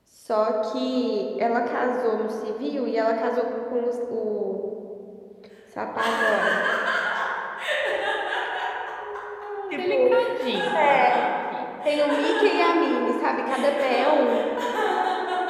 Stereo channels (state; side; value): identical; both; correlation 1.00